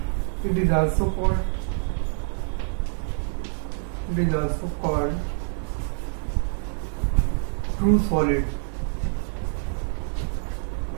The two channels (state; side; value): silent; left; digital silence